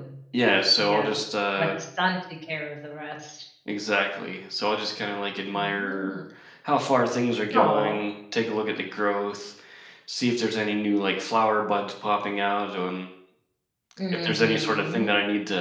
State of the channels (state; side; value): identical; both; correlation 1.00